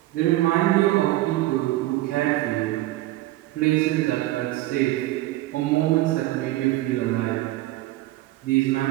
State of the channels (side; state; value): left; quieter; 16.8 dB